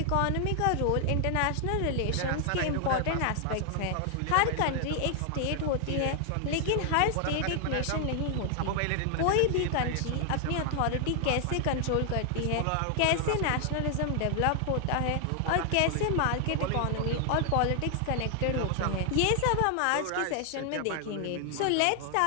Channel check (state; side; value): different; both; correlation 0.00